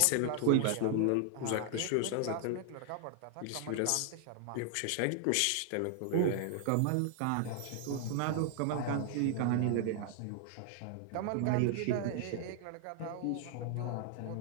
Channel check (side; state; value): both; different; correlation 0.00